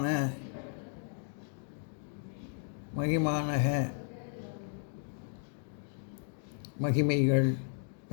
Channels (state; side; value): silent; right; digital silence